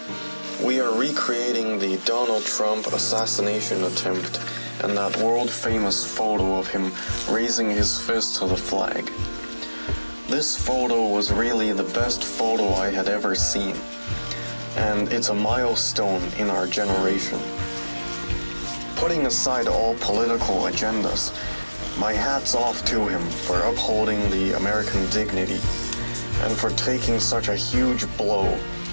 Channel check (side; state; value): both; inverted; correlation -1.00